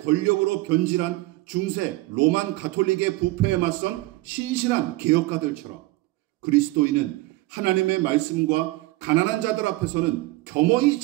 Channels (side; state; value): left; quieter; 19.8 dB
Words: 변질한 중세 로만 가톨릭의 부패에 맞선 신실한 개혁가들처럼 그리스도인은 하나님의 말씀과 가난한 자들 앞에서는 겸허히